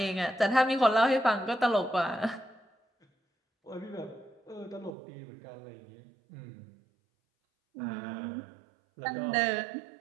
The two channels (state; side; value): drops out; left; at 4.9 s